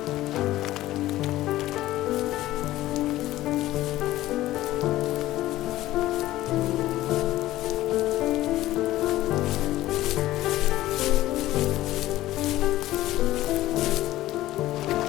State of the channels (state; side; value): quieter; right; 15.6 dB